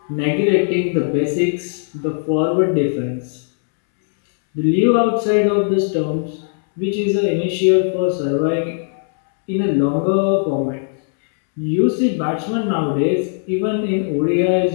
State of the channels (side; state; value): right; silent; 67 dB below the other